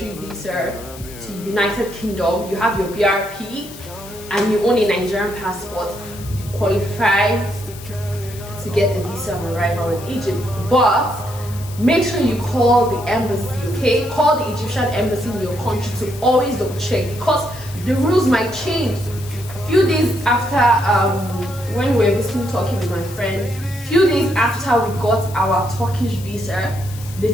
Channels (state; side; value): noise; left; hiss, 17 dB below the sound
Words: visa to United Kingdom, you have your BRP, and you own a Nigerian passport, you qualify to get a visa on arrival in Egypt. But make sure you call the embassy, okay? Call the Egyptian embassy in your country to always double check, because the rules might change. A few days after when we were visiting Turkey with my friend, few days after we got our Turkish visa, they